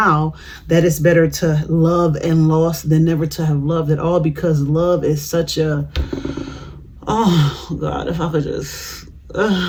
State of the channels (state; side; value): identical; both; correlation 1.00